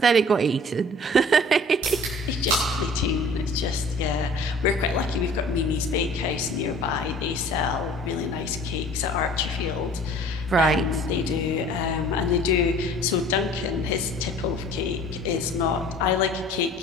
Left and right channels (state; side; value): normal; both; correlation 0.48